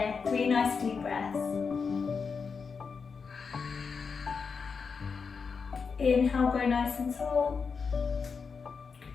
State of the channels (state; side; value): quieter; right; 5.5 dB